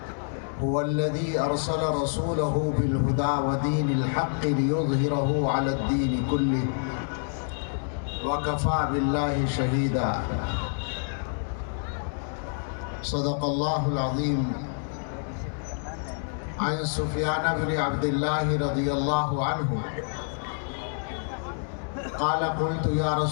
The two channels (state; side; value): silent; right; digital silence